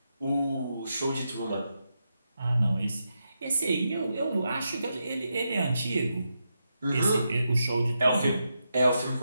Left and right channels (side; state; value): both; inverted; correlation -0.85